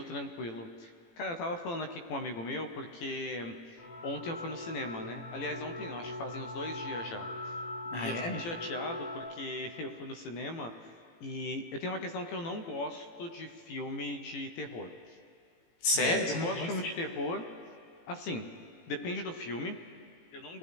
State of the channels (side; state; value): right; late; 18 ms